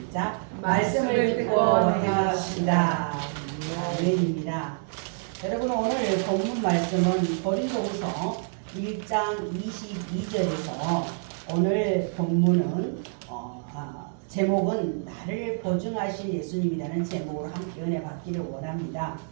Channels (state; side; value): silent; left; 60 dB below the other